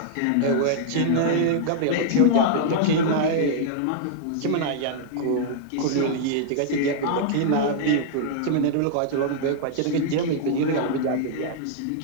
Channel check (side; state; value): both; different; correlation -0.01